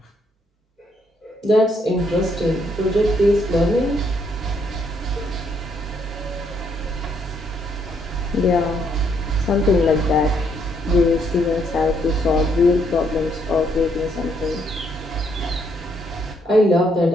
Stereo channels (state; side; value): normal; both; correlation 0.72